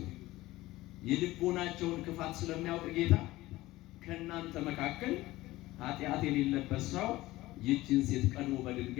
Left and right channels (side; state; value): right; quieter; 17.9 dB